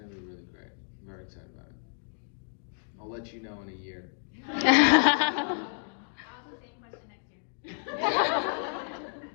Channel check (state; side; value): silent; right; digital silence